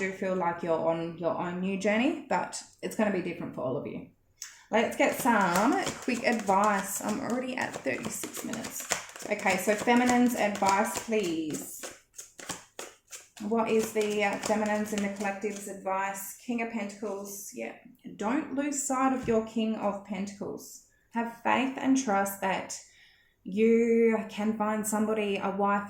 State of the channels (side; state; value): both; identical; correlation 1.00